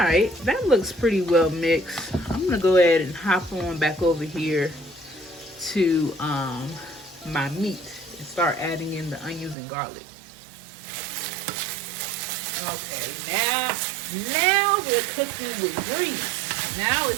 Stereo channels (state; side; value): drops out; left; at 9.6 s